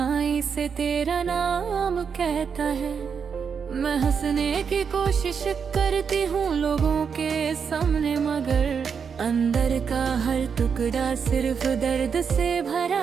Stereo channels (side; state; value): left; quieter; 6.4 dB